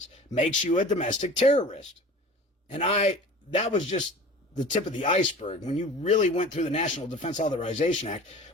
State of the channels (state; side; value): normal; both; correlation 0.40